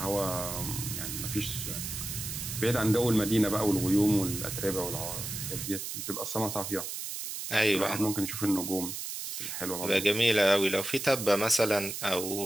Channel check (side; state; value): right; noise; hiss, 6 dB below the sound